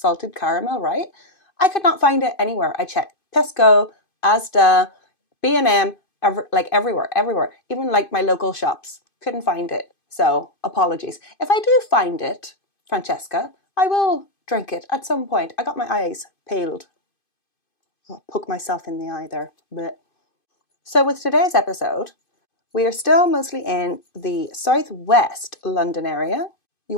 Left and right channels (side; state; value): right; late; 2.5 ms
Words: caramel, right? I could not find it anywhere. I checked Tesco, Asda, B&M, everywhere. Even like my local shops. Couldn't find it. So, apologies. If I do find it, Francesca, I will drink it at some point. I got my eyes peeled. I'll poke myself in the eye there. Blech. So with today's episode, we are still mostly in the southwest London area. You